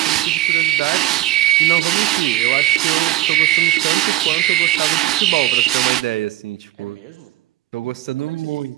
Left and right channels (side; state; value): left; quieter; 14.8 dB